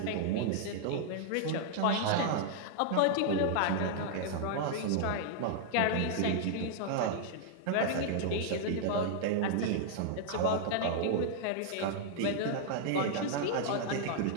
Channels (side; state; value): both; different; correlation -0.01